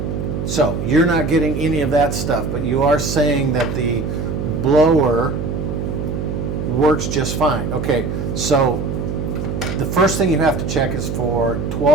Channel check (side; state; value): right; noise; hum, 3 dB below the sound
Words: So you're not getting any of that stuff, but you are saying that the blower works just fine. Okay, so the first thing you have to check is for